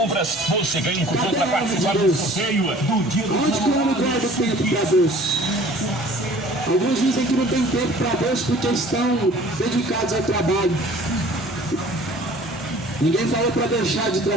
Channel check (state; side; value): normal; both; correlation 0.49